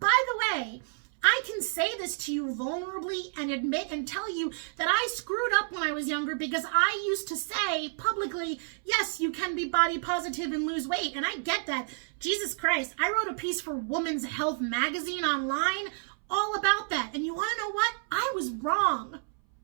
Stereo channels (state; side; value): silent; left; 58 dB below the other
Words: the way, I can say this to you vulnerably and admit and tell you that I screwed up when I was younger, because I used to say publicly, yes, you can be body positive and lose weight. And I get that. Jesus Christ. I wrote a piece for Women's Health magazine online all about that. And you want to know what? I was wrong.